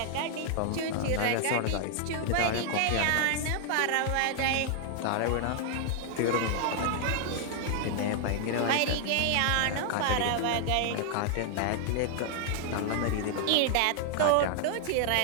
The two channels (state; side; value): different; both; correlation 0.00